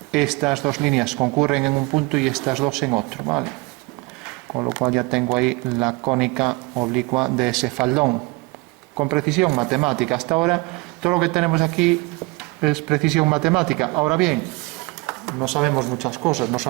estas dos líneas concurren en un punto y estas dos en otro, ¿vale? Con lo cual ya tengo ahí la cónica oblicua de ese faldón. Con precisión matemática. Hasta ahora todo lo que tenemos aquí es precisión matemática. Ahora bien, no sabemos muchas cosas, no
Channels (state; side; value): quieter; left; 25.0 dB